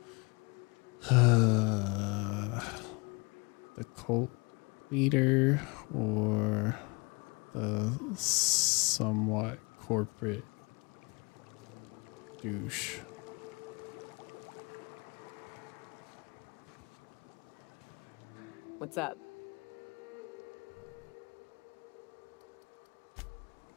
The cult leader or the somewhat corporate douche? What's up?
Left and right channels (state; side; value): quieter; right; 29.2 dB